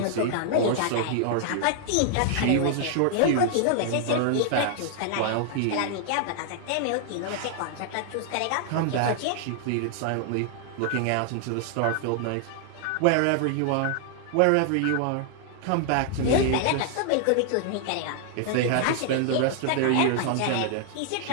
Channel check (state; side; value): different; both; correlation -0.01